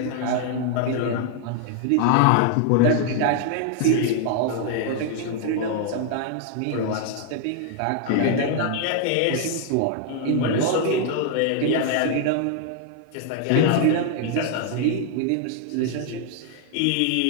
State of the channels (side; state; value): both; different; correlation 0.00